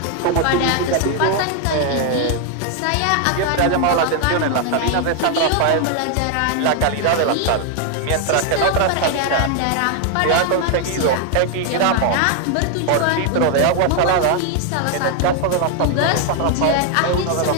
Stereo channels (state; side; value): different; both; correlation 0.00